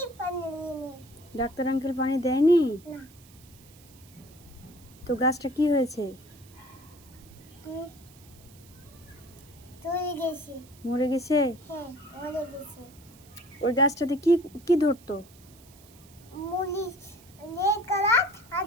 ডাক্তার আঙ্কেল পানি দেয়নি? তো গাছটা কি হয়েছে? মরে গেছে? ওই গাছটাতে কি কি ধরতো?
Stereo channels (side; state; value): right; noise; hiss, 24 dB below the sound